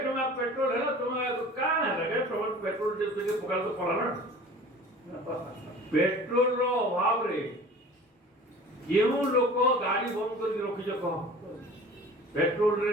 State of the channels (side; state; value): both; normal; correlation 0.42